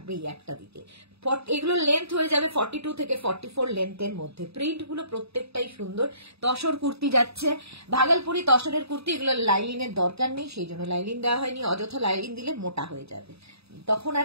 একটা দিকে। এগুলো লেন্থ হয়ে যাবে 42 থেকে 44 লেন্থের মধ্যে। প্রিন্ট গুলো প্রত্যেকটাই সুন্দর। তসর কুর্তি যাচ্ছে, ভাগলপুরি তসরের কুর্তি। এগুলো লাইলিনের দরকার নেই, সেই জন্য লাইলিন দেওয়া হয়নি। অযথা লাইলিন দিলে মোটা হয়ে যাবে, তখন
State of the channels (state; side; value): late; left; 0.78 ms